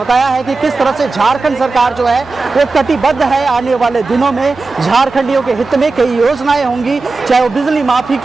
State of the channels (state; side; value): quieter; left; 3.8 dB